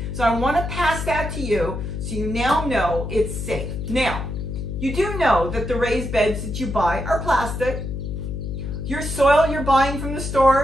So I want to pass that to you so you now know it's safe. Now, you do know that the raised beds that you buy are plastic. Your soil you're buying from the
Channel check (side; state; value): left; noise; hum, 5 dB below the sound